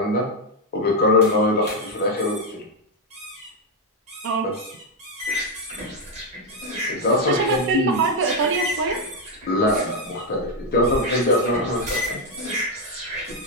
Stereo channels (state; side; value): normal; both; correlation 0.03